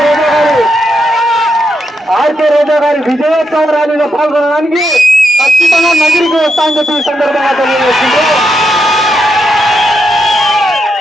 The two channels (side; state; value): both; normal; correlation 0.82